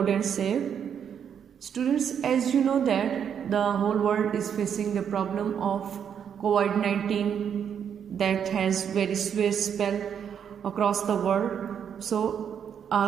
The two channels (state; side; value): quieter; left; 8.1 dB